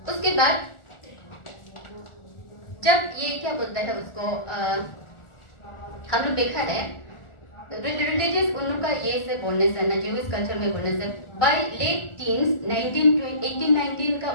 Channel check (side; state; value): right; late; 1.4 ms